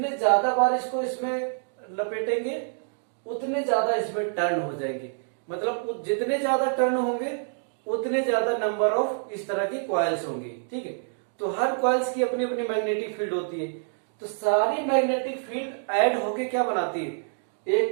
ज्यादा बार इसको इसमें लपेटेंगे उतने ज्यादा इसमें टर्न हो जाएंगे, मतलब जितने ज्यादा टर्न होंगे उतने ज्यादा नंबर ऑफ इस तरह की कॉइल्स होंगी, ठीक है। तो हर कॉइल्स की अपनी अपनी मैग्नेटिक फील्ड होती है, तो सारी मैग्नेटिक फील्ड ऐड होके क्या बनाती है,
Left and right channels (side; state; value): left; silent; digital silence